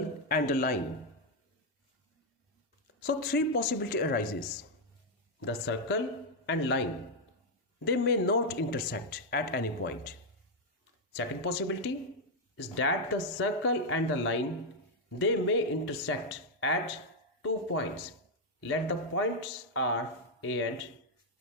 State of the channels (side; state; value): both; normal; correlation 0.00